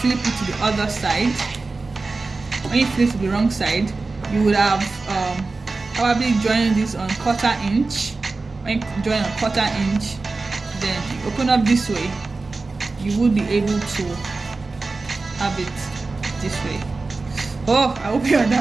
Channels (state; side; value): quieter; left; 3.7 dB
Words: it to the other side. When you flip to the wrong side, you would have probably joined this on 1/4 inch. When you join on 1/4 inch, then you open up this way, you would be able to have it this way. Oh, I hope you